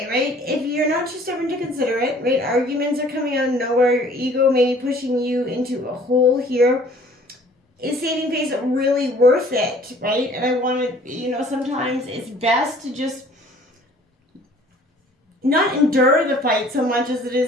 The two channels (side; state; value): both; normal; correlation 0.53